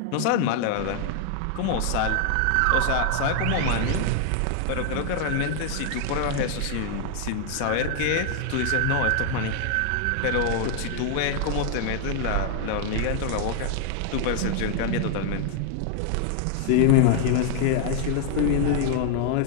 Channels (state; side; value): different; both; correlation 0.00